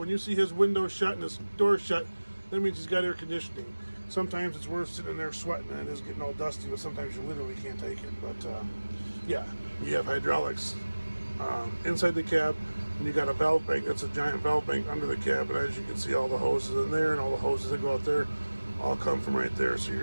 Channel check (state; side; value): inverted; both; correlation -1.00